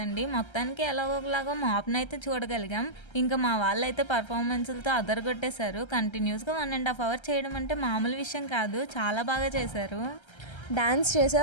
మొత్తానికి ఎలాగోలాగో మాప్ని అయితే చూడగలిగాం. ఇంకా మా వాళ్ళైతే పర్ఫార్మెన్స్లతో అదరగొట్టేశారు. కంటిన్యూస్గా 1.5 hours చేయడం అంటే మామూలు విషయం కాదు, చాలా బాగా చేశారు. డాన్స్ చేసే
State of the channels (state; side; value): late; right; 1.3 ms